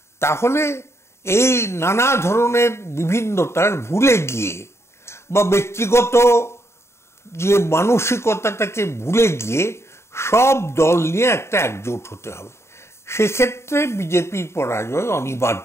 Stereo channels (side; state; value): right; late; 0.13 ms